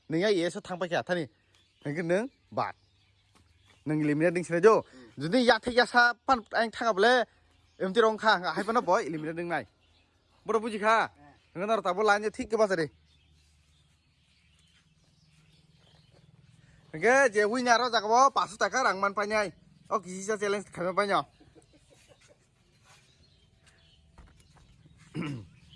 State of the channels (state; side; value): identical; both; correlation 1.00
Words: nengai yes tang pakai tani, hingga neng bat. Neng eliminate ding sini jo, jadi ya thek ya sa pan ang thang able, em ti rong kha, hai pan boy eliminate ding nai, boro buji kha, neng nor tabo lain je thik ke pas re, neng je win nyaro jaga bo pasu taka rang man panyai, oh kisi sa challenge kami panyo,